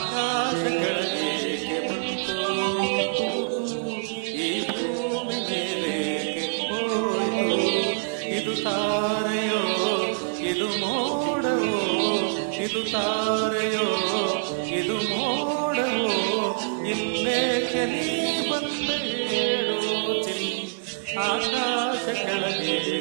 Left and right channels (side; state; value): left; silent; digital silence